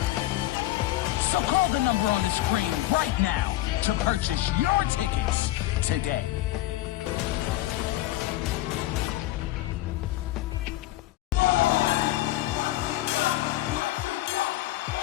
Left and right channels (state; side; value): quieter; right; 16.1 dB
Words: So call the number on the screen right now to purchase your tickets today.